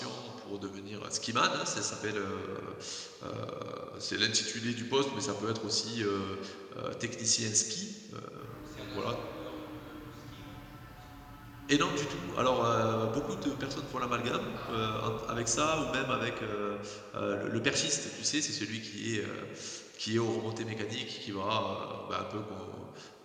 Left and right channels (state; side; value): identical; both; correlation 1.00